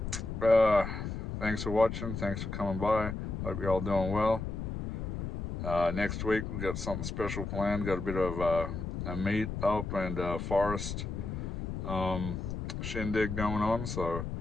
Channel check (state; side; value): noise; left; rumble, 4 dB below the sound